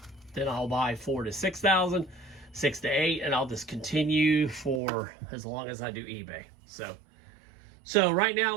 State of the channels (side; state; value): left; drops out; at 4.8 s